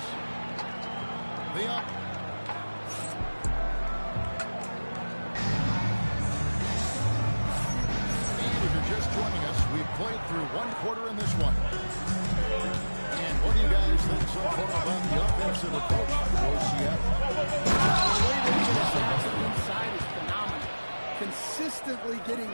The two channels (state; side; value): inverted; both; correlation -1.00